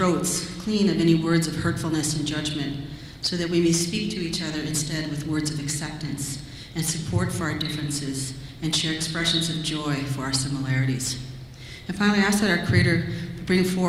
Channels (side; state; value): both; identical; correlation 1.00